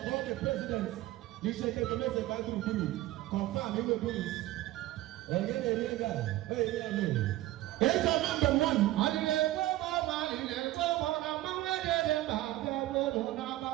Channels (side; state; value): left; quieter; 16.3 dB